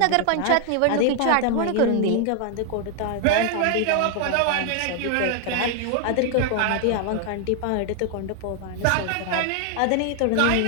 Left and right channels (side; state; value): both; different; correlation 0.00